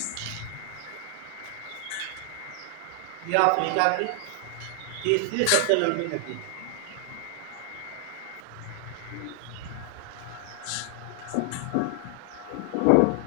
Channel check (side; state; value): both; different; correlation 0.00